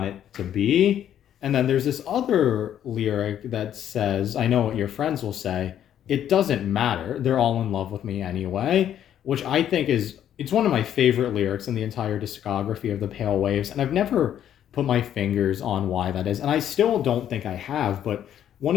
it to be. And then there's this other lyric that says, "I know what your friends will say. It doesn't matter. They're all in love with me anyway," which I think is it's one of my favorite lyrics in the entire discography of the Pale Waves, and I've never put my fingers on why that is, and I still don't think I have, but one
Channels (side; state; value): right; quieter; 10.4 dB